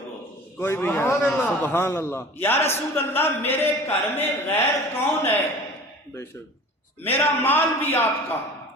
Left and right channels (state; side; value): normal; both; correlation 0.41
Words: کوئی بھی نہیں. سبحان اللہ. یا رسول اللہ میرے گھر میں غیر کون ہے؟ بے شک. میرا مال بھی آپ کا،